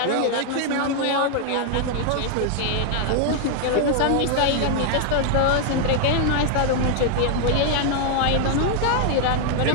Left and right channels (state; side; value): different; both; correlation 0.00